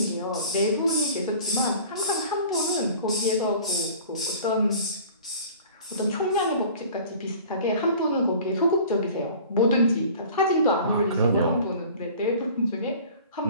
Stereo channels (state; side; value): inverted; both; correlation -0.45